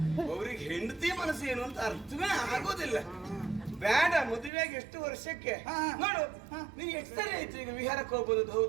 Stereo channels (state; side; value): drops out; left; at 4.5 s